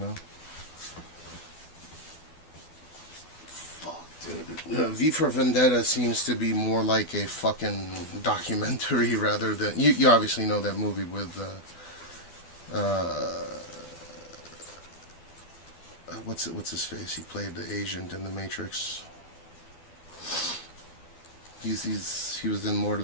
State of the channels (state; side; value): late; right; 12 ms